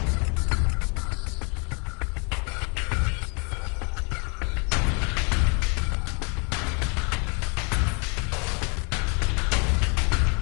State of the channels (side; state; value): right; quieter; 34.2 dB